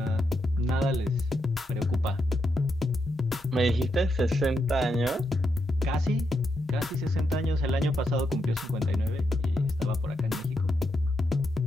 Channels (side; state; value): both; normal; correlation 0.82